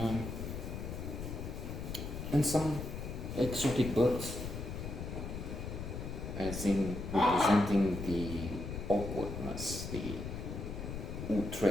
And some exotic birds, as in representing the awkwardness, the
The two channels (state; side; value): noise; left; rumble, 6 dB below the sound